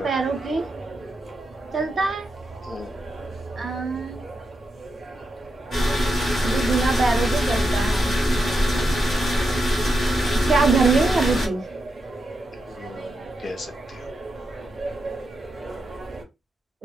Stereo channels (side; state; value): both; normal; correlation 0.85